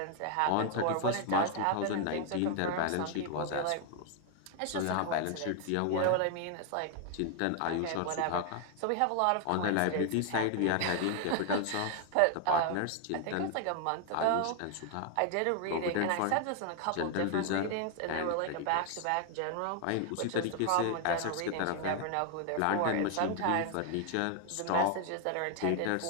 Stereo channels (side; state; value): both; different; correlation 0.00